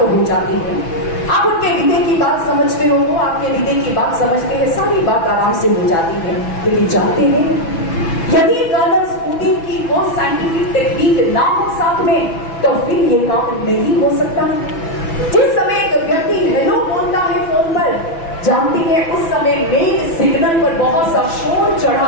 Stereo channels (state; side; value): late; right; 6.0 ms